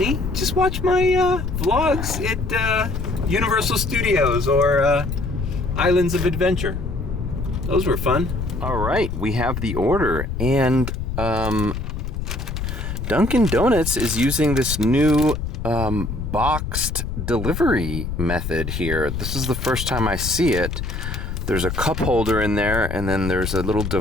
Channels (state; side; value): noise; left; rumble, 4 dB below the sound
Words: just watch my vlogs at Universal Studios or Islands of Adventure. Those were fun. All right, we have the order, and Dunkin' Donuts is using this new boxed delivery method here. This is the first time I see it. There's a cup holder in there, and then there's a little